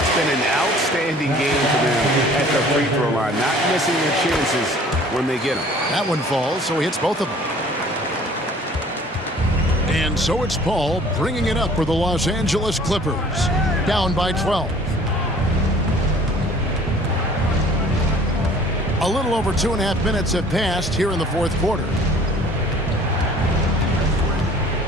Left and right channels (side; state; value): both; normal; correlation 0.51